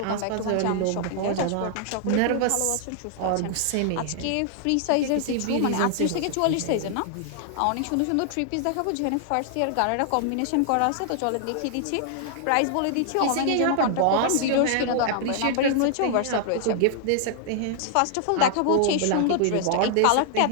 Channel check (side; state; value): both; different; correlation 0.00